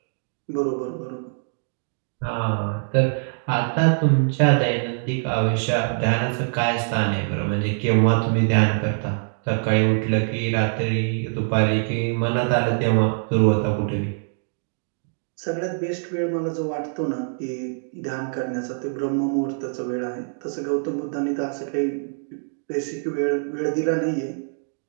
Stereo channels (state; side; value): silent; left; digital silence